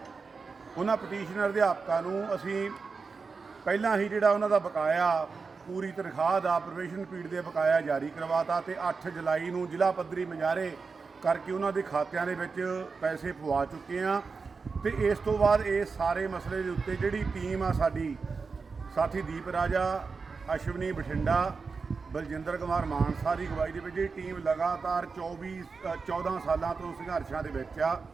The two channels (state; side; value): quieter; left; 4.7 dB